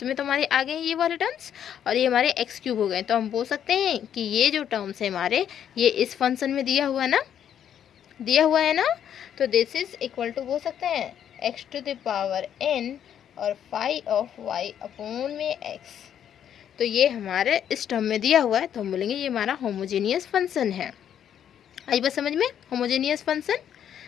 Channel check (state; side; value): quieter; right; 9.5 dB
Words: में तो हमारे आ गए ये वाले टर्म्स और ये हमारे एक्स क्यूब हो गए, तो हम बोल सकते हैं कि ये जो टर्म्स है हमारे ये इस फंक्शन में दिया हुआ है ना, तो दिस इज इक्वल टू बोल सकते हैं x to the power n और फाई ऑफ y अपॉन में x, तो ये हमारे इस टर्म में दिया हुआ है, तो हम बोलेंगे ये हमारा होमोजेनियस फंक्शन है। आई बात समझ में, होमोजेनियस फंक्शन।